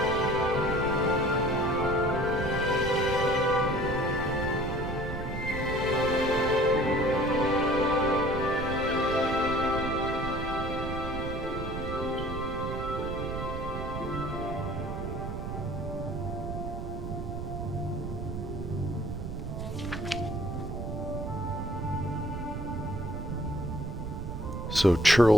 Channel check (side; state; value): right; noise; rumble, 5 dB below the sound